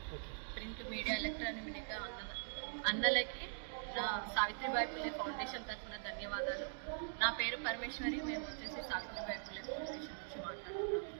ప్రింట్ మీడియా, ఎలక్ట్రానిక్ మీడియా అన్నలకి నా సావిత్రిబాయి పుల్లే ఫౌండేషన్ తరఫున ధన్యవాదాలు. నా పేరు పరమేశ్వరి. మేము వచ్చేసి సావిత్రిబాయి పుల్లే ఫౌండేషన్ నుంచి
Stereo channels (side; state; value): left; silent; digital silence